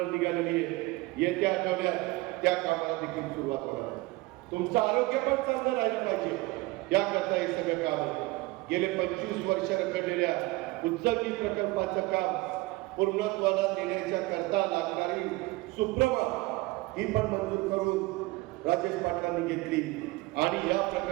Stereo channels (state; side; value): quieter; left; 21.7 dB